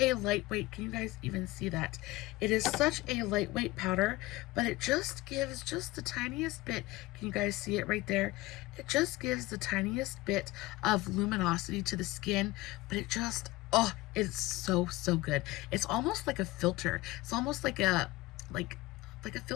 lightweight, can you guys even see that? It is such a lightweight powder, but it just gives just the tiniest bit. Can you guys see it right there? It just gives the tiniest bit of luminosity to the skin, but it just, oh, it's so, so good. It's almost like a filter. It's almost like a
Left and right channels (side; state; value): right; quieter; 19.4 dB